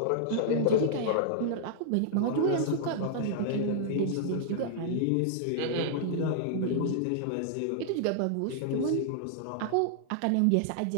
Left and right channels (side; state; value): both; different; correlation -0.01